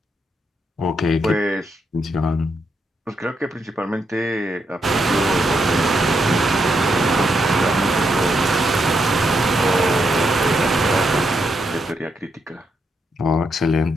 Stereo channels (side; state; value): both; normal; correlation 0.80